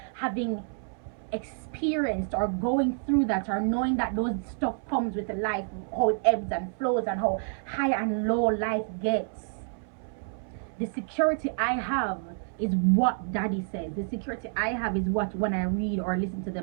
Having experienced or going through that, or knowing that those stuff comes with life, how it ebbs and flows and how high and low life gets. The security I have is what daddy says. The security I have is what, when I read or listen to the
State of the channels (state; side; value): silent; left; 59 dB below the other